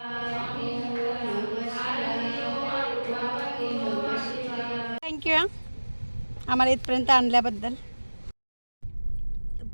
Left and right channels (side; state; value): both; inverted; correlation -1.00